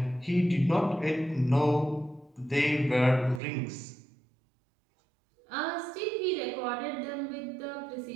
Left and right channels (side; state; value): left; drops out; at 3.4 s